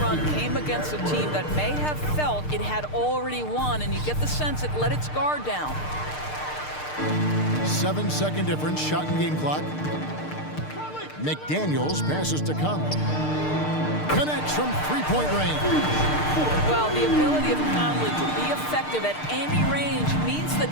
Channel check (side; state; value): right; late; 6.6 ms